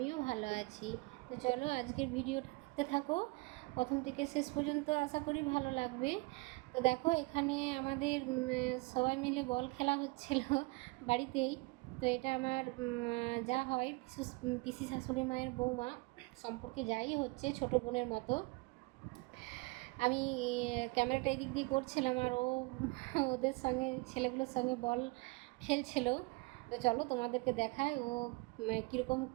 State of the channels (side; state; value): left; quieter; 26.0 dB